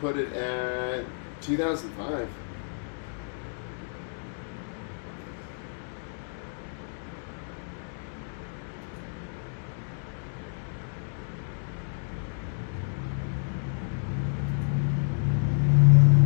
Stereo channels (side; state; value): right; silent; digital silence